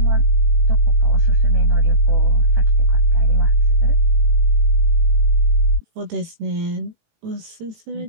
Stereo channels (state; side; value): late; left; 18 ms